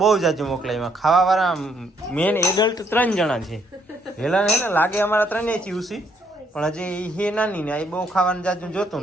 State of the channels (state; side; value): normal; both; correlation 0.70